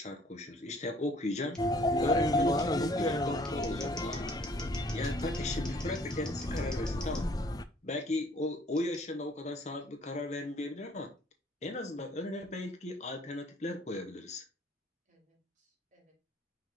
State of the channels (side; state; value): both; normal; correlation 0.58